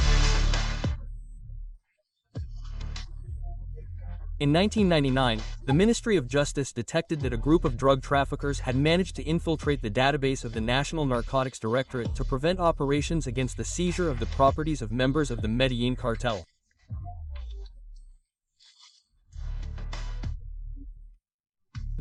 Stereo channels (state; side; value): identical; both; correlation 1.00